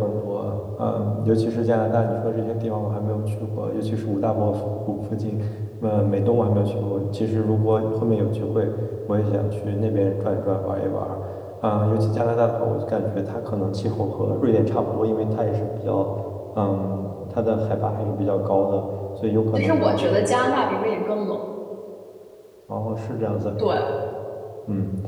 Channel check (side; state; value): both; identical; correlation 1.00